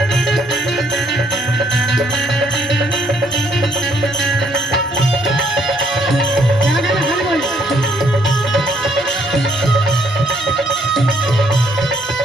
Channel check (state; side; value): normal; both; correlation 0.67